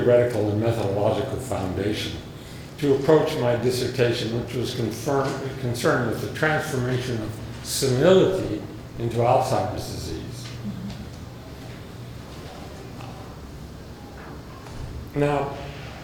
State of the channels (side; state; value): both; identical; correlation 1.00